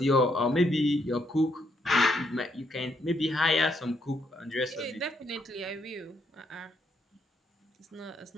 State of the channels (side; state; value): both; normal; correlation 0.75